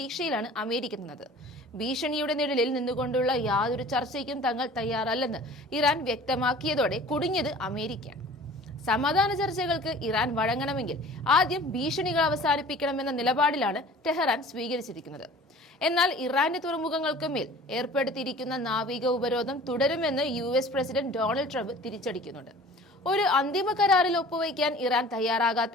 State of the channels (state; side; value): normal; both; correlation 0.45